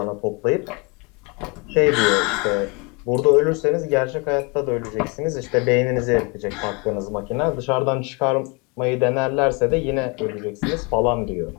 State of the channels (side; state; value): right; quieter; 30.9 dB